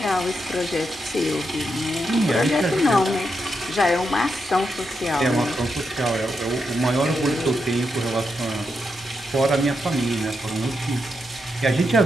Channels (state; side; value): normal; both; correlation 0.84